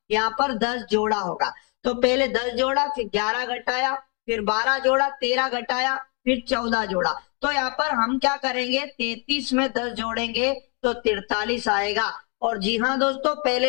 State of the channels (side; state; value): right; quieter; 36.3 dB